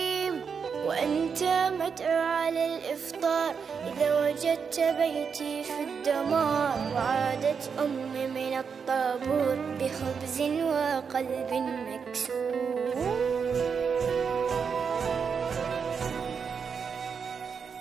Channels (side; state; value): left; quieter; 6.2 dB